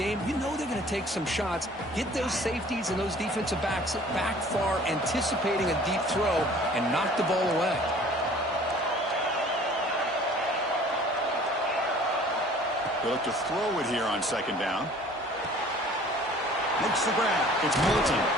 you know they're going to take some shots. Get those safeties and those defensive backs back far, anticipating a deep throw, and knock the ball away. They look to throw it here on second down. Makes the grab. It's Moulton.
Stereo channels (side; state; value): both; normal; correlation 0.50